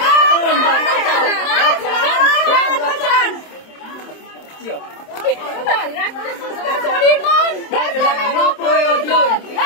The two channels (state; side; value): late; right; 27 ms